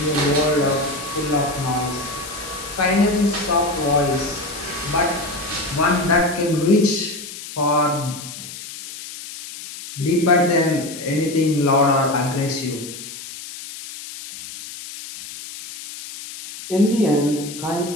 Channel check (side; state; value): left; noise; hiss, 12 dB below the sound